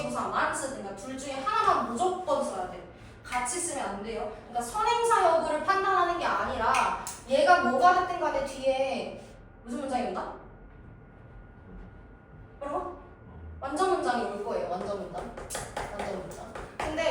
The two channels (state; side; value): identical; both; correlation 1.00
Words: 쓰든가 둘 중에 하나만 무조건 써야 돼. 같이 쓰면 안 돼요. 그러니까 선행사 여부를 판단하는 게 아니라 얘가 뭐가 됐든 간에 뒤에 무슨 문장이 온다? 그럼 완전 문장이 올 거예요. 완전 문장.